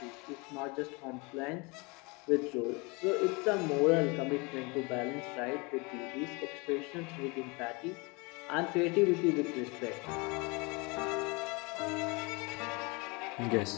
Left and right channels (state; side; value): quieter; right; 27.9 dB